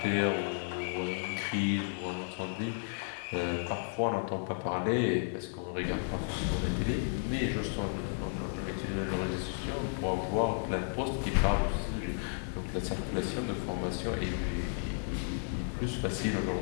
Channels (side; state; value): right; silent; 56 dB below the other